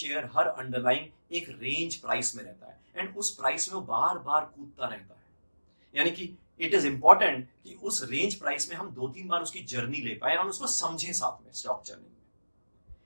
हर अंडरलाइन एक रेंज प्राइस में रहता है, एंड उस प्राइस में वो बार बार कूदता रहता है। यानी कि इट इज इंपॉर्टेंट कि उस रेंज प्राइस में हम 2-3 बार उसकी जर्नी ले पाए और उसको समझें साथ में स्टॉक जर्नी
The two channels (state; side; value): inverted; both; correlation -1.00